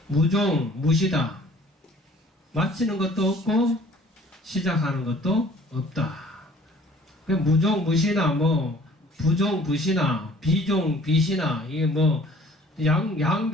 무종 무시다. 마치는 것도 없고 시작하는 것도 없다. 무종 무시나 부종 부시나 비종 비시나 이게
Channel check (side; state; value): both; normal; correlation 0.53